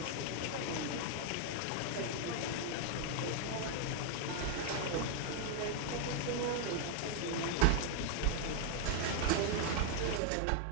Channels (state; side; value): different; both; correlation 0.00